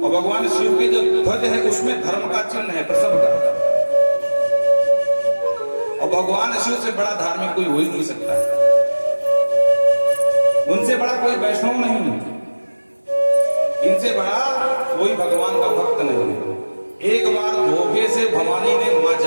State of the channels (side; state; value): both; inverted; correlation -1.00